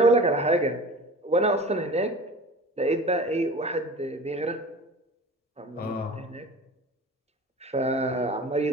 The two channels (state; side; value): normal; both; correlation 0.38